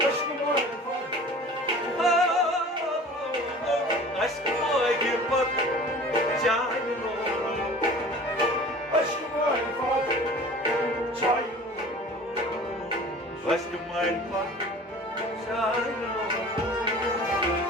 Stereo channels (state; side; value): normal; both; correlation 0.43